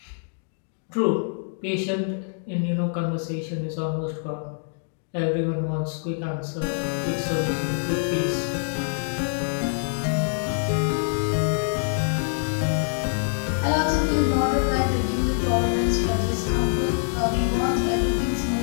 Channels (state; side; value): silent; right; digital silence